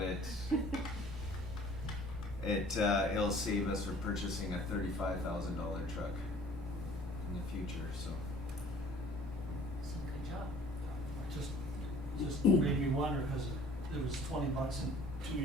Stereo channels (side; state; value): both; normal; correlation 0.52